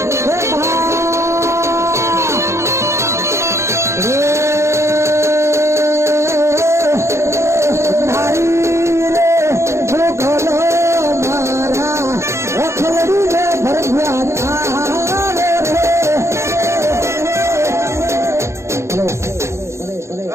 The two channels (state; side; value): late; left; 0.13 ms